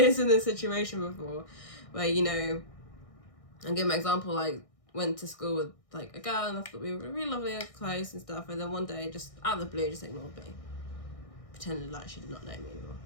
in this situation before, where, you know, I'll give my example, like, went to school with like a girl, and I thought we were really lovely and close and stuff, and then one day, just out of the blue, just ignored me, pretended like she did not know me anymore,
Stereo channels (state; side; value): late; right; 1.6 ms